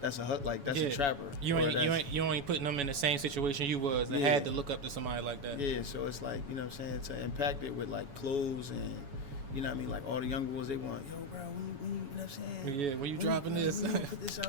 a trapper. You ain't putting them in the same situation you was and had to look up to somebody like that. Yeah, so it's like, you know what I'm saying, to impact it with like clothes and, you know what I mean, like all the young boys, they want, yo, bro, when you know what I'm saying? Yeah, when you dropping this? When you put this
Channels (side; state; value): left; late; 7.1 ms